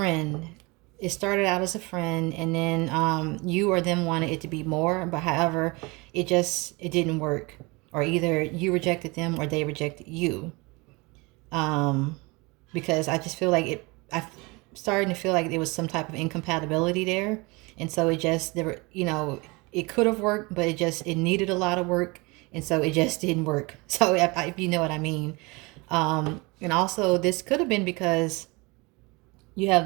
It started out as a friend, and then you or them wanted it to be more, but however, it didn't work, or either you rejected them or they rejected you. Because I just feel like I'm starting to feel like there was some type of incompatibility there, and so it could have worked, but it needed a lot of work, and so it just didn't work. So if you know what I mean. And also this could have been because you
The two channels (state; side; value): quieter; left; 25.9 dB